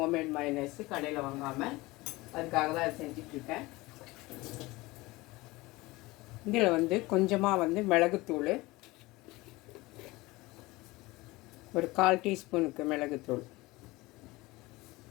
மயனைஸு, கடையில் வாங்காமல். அதுக்காக தான் அதை செஞ்சிட்ருக்கேன். இதில் வந்து கொஞ்சமாக வந்து மிளகுத்தூள், ஒரு 1/4 டீஸ்பூனுக்கு மிளகுத்தூள்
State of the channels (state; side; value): quieter; right; 21.3 dB